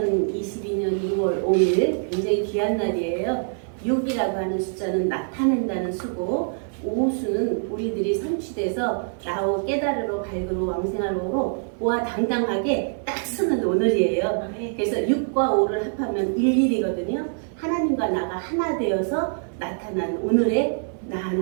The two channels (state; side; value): silent; left; digital silence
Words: 6월 5일 굉장히 귀한 날이에요. 6이라고 하는 숫자는 나타낸다는 수고, 오수는 우리들이 성취돼서 나오 깨달으러 밝으로 왕생하로 보아 당당하게 딱 쓰는 오늘이에요. 그래서 6과 5를 합하면 11이거든요. 하나님과 나가 하나 되어서 나타난 오늘의 나